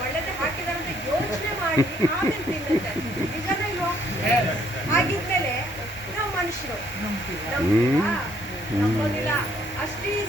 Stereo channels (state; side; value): normal; both; correlation 0.66